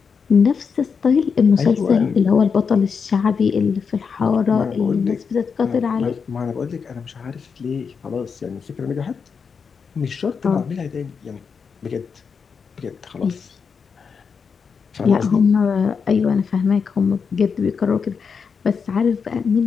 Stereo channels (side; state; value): right; quieter; 5.9 dB